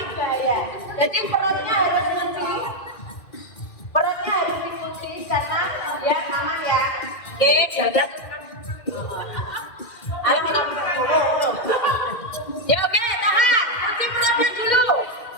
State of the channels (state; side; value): late; right; 2.1 ms